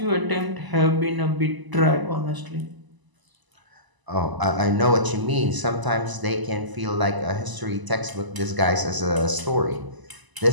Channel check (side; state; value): left; late; 1.0 ms